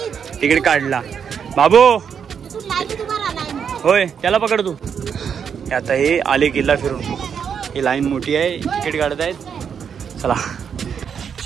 तिकीट काढला. बाबू होय, त्याला पकड तू. आता हे आले किल्ला फिरून. ही लाईन मोठी आहे, तिकीट काढत आहेत. चला,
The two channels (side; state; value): left; quieter; 7.3 dB